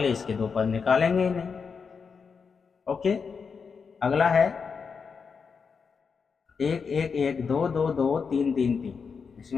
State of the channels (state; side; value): quieter; right; 5.7 dB